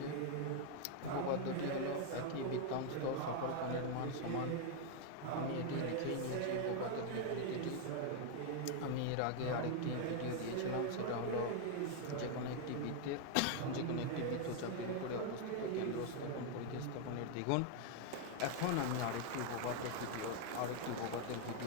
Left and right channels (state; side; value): different; both; correlation 0.00